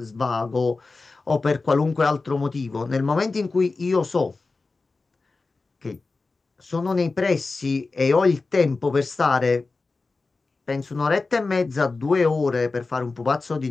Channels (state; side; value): quieter; right; 3.8 dB